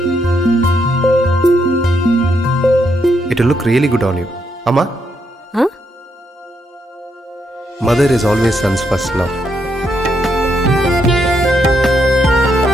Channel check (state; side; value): normal; both; correlation 0.78